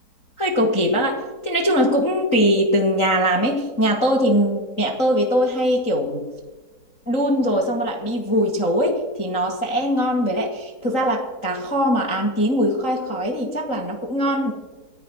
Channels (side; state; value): right; late; 3.9 ms